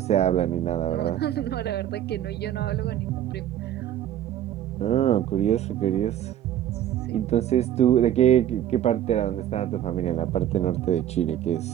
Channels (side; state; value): left; quieter; 11.3 dB